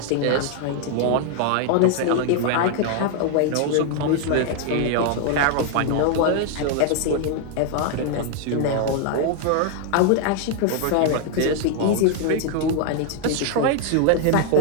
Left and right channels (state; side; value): different; both; correlation 0.00